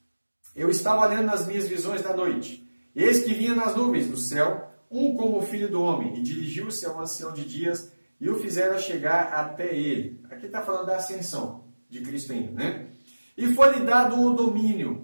Eu estava olhando nas minhas visões da noite, e eis que vinha nas nuvens do céu, um como o filho do homem, e dirigiu-se ao ancião de dias, e o fizeram chegar até ele. Aqui está falando da ascensão de Cristo ainda, né? E foi-lhe dado o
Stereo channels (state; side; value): inverted; both; correlation -1.00